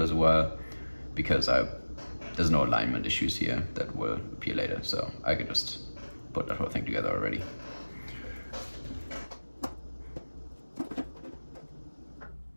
as well, because there's no alignment issues here that will appear later, so I could just put that whole thing together already.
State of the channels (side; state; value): both; inverted; correlation -1.00